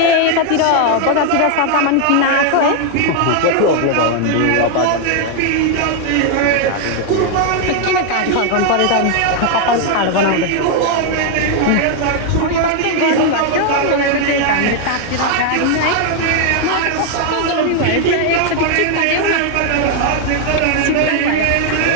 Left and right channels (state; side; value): different; both; correlation 0.00